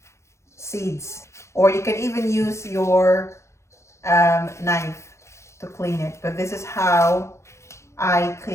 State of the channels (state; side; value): late; right; 0.14 ms